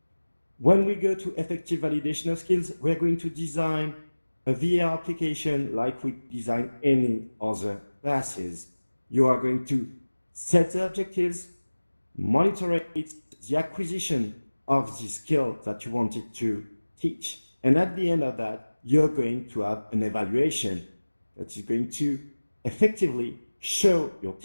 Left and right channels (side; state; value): both; inverted; correlation -1.00